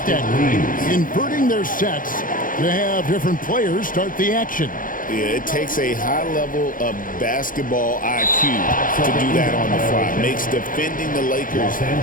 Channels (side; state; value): right; late; 0.40 ms